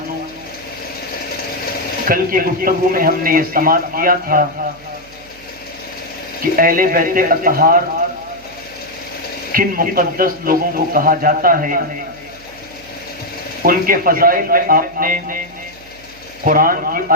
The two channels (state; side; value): noise; right; hum, 25 dB below the sound